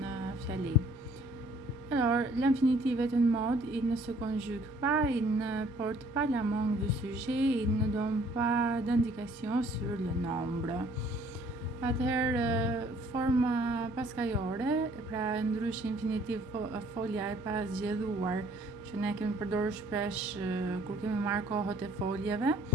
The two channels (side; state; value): both; normal; correlation 0.58